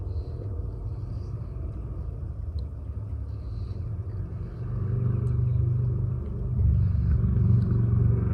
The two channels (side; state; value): both; identical; correlation 1.00